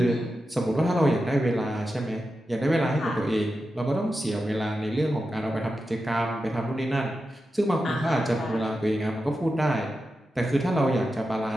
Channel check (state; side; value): normal; both; correlation 0.90